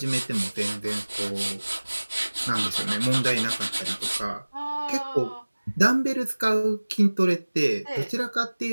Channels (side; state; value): both; inverted; correlation -1.00